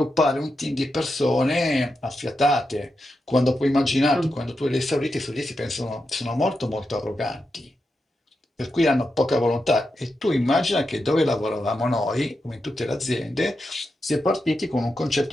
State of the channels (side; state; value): both; normal; correlation 0.87